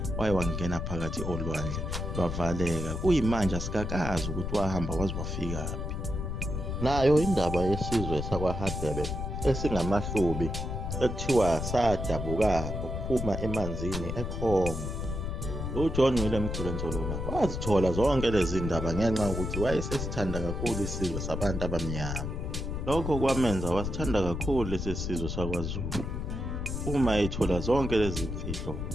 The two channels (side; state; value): left; noise; rumble, 4 dB below the sound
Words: wangena phakathi olwandle lwavaleka. Kuyimanje asikakazi ukuthi wahamba waze wafikaphi. Nayo indaba yesizwe sakwaHadebe esingamahlubi ekuthiwa sadabuka ukuphuma emanzini eCongo. uJohn William Khulensholona wazithola zonke lezi ndaba ngenxa yokuthi wayesesithanda kakhulu isizwe sabantu abamnyama. Lokho kwamenza wasithanda kakhulu lesi sizwe sakwaZulu. Uma ethola zonke lezi mfihlo